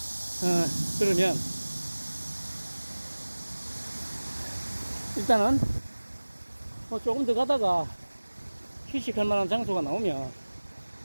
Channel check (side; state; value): both; inverted; correlation -1.00